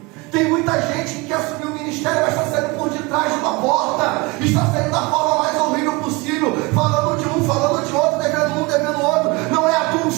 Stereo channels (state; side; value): quieter; left; 24.5 dB